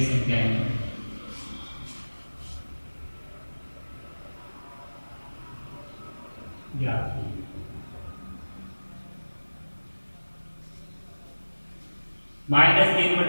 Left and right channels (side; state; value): both; inverted; correlation -1.00